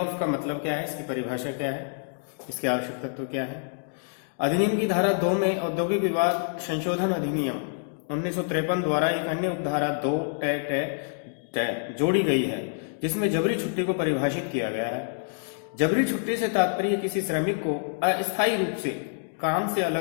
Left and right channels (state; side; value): silent; right; digital silence